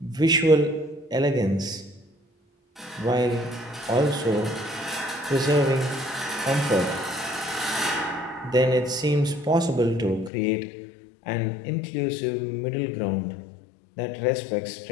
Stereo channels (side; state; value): right; drops out; at 10.3 s